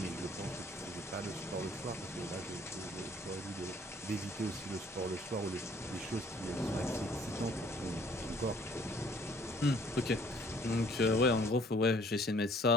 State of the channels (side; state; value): both; normal; correlation 0.58